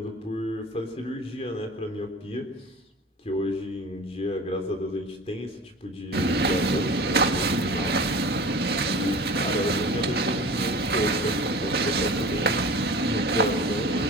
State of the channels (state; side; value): normal; both; correlation 0.38